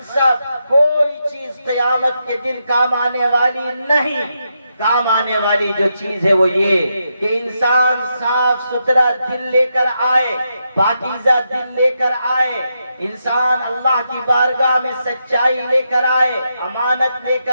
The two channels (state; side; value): inverted; both; correlation -0.83